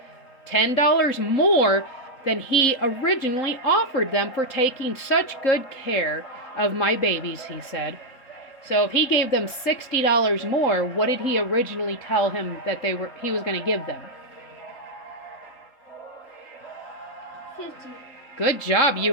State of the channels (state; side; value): late; right; 3.8 ms